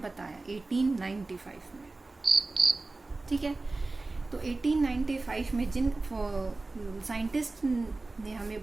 बताया 1895 में। ठीक है, तो 1895 में जिन साइंटिस्ट ने हमें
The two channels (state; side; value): quieter; left; 3.3 dB